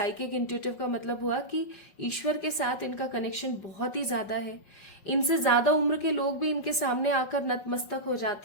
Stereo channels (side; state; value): right; late; 5.4 ms